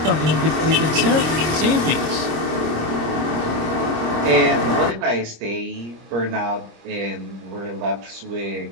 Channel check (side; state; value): left; late; 26 ms